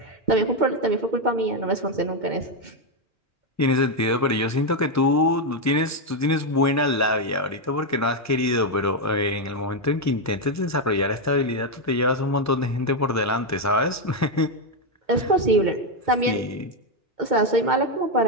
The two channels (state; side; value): normal; both; correlation 0.04